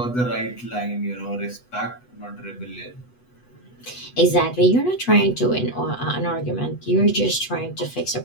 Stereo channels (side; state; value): right; late; 8.1 ms